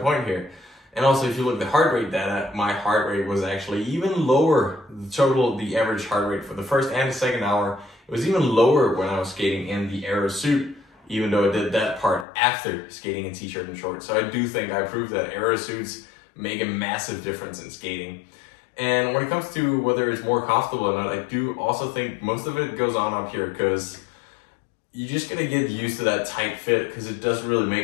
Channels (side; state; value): right; drops out; at 12.2 s